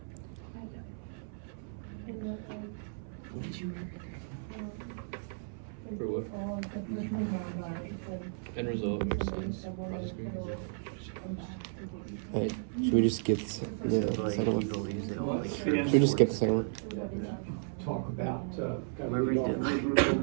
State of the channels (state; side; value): silent; left; 55 dB below the other